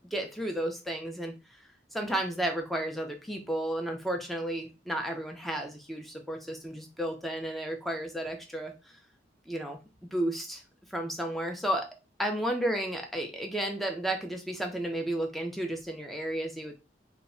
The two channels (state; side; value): normal; both; correlation 0.72